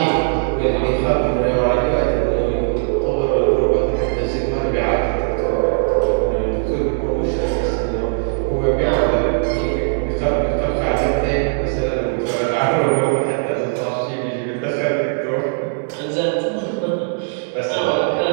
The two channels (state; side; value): silent; left; digital silence